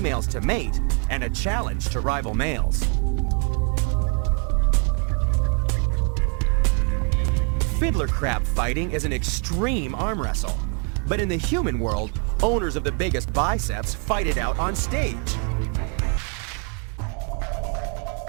to mate and a challenge to rival males. Fiddler crab fighting is an extreme arm wrestle, but in the human world, owners of the biggest biceps fight it out on stage.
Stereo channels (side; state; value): left; quieter; 36.3 dB